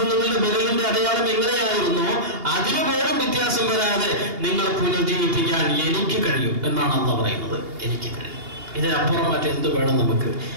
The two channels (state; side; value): late; left; 2.8 ms